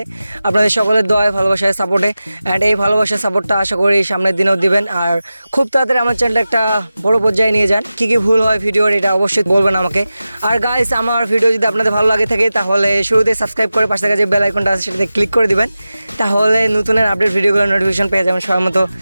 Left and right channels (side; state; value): both; inverted; correlation -0.94